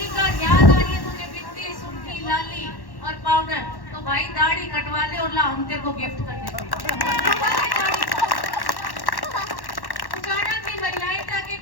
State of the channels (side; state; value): right; late; 1.1 ms